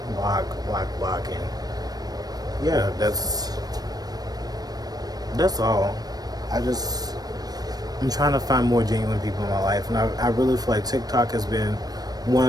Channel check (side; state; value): left; late; 0.19 ms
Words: and yeah, that's all. I'm trying to find more genuine people in my life, and I really feel like TikTok has been one